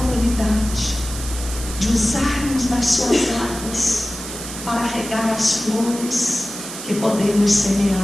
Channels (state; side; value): noise; right; hiss, 10 dB below the sound